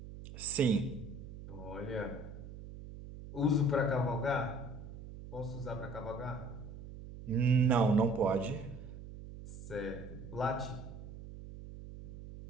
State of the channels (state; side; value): noise; right; hum, 12 dB below the sound